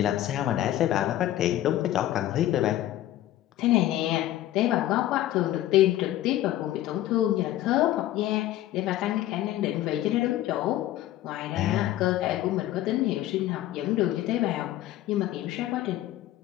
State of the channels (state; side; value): quieter; right; 13.9 dB